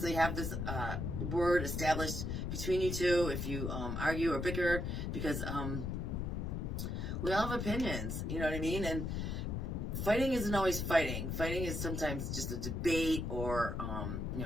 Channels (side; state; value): left; noise; rumble, 2 dB below the sound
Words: have this word established between you two if you argue or bicker, because we all have opinions, you know what I mean? And fighting isn't always fighting. Fighting is sometimes just a debate or,